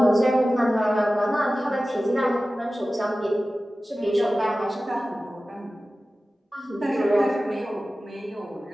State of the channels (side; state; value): both; normal; correlation 0.96